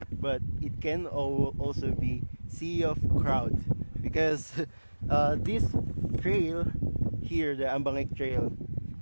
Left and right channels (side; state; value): both; inverted; correlation -1.00